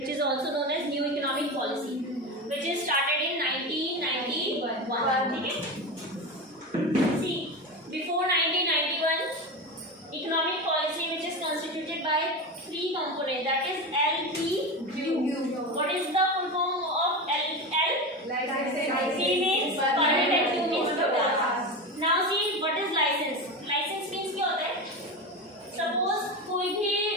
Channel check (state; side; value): normal; both; correlation 0.22